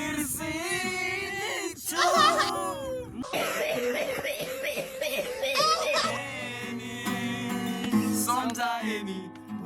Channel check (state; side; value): identical; both; correlation 1.00